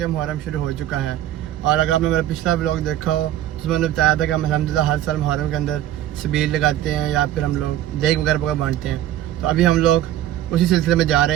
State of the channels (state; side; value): quieter; left; 12.7 dB